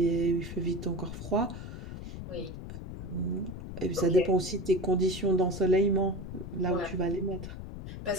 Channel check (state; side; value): noise; left; rumble, 9 dB below the sound